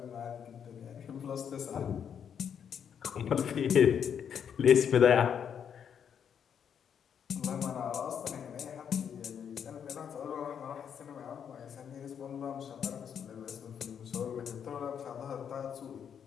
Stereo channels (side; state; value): right; quieter; 8.0 dB